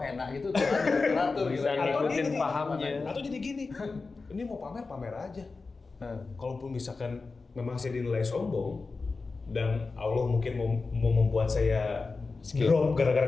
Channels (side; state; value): right; quieter; 4.1 dB